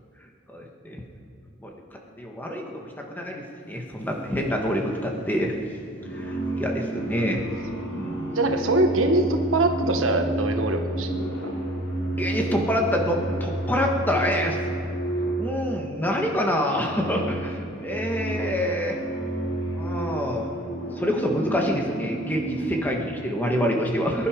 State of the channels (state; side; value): normal; both; correlation 0.50